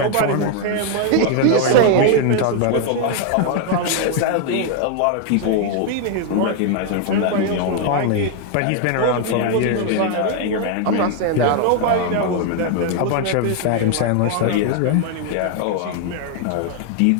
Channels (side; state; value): both; different; correlation 0.00